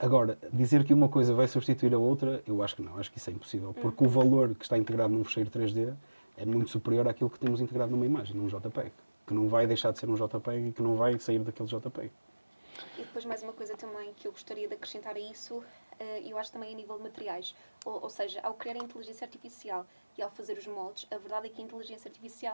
dizer que uma coisa vai substituir a outra, eu acho que não, acho que isso é impossível, porque o valor que está integrado num fecheiro 3D é muito superior àquilo que temos integrado numa imagem, num JPEG, que não vai deixar de ser um JPEG e que não vai sair daquele JPEG. E depois mais uma coisa também que eu gostaria de acrescentar a isso, eu acho também a nível de materiais. Ou seja, ao criar a inteligência artificial e ao fazer os moldes, a verdade é que a inteligência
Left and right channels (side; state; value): both; inverted; correlation -1.00